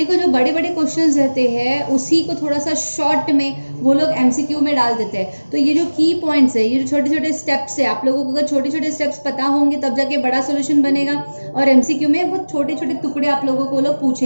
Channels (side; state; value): both; inverted; correlation -1.00